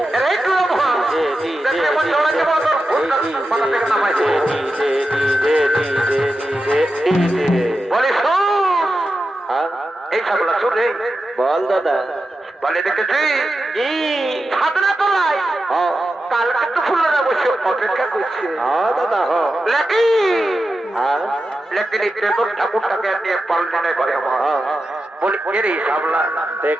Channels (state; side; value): normal; both; correlation 0.91